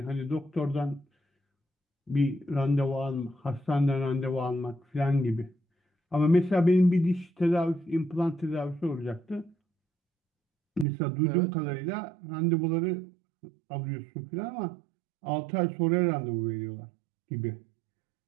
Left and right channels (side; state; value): left; drops out; at 10.9 s